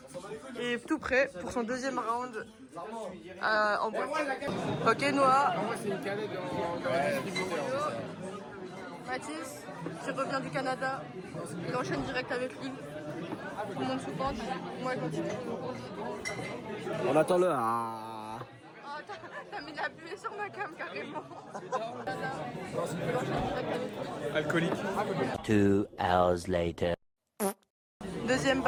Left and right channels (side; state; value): both; identical; correlation 1.00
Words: Et tout prêt pour son deuxième round en boîte. Ok, Noah. Mathis, qui revient du Canada. Il enchaîne direct avec lui. Tout le monde sous pente. Moi, je continue. On attend le... Ah. Oh, t'as mis de la buée sur ma cam carrément. Alcoolique. 2 hours later. Deuxième